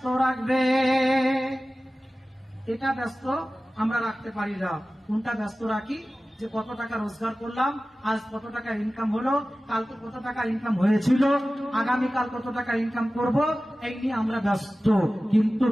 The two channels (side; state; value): both; normal; correlation 0.96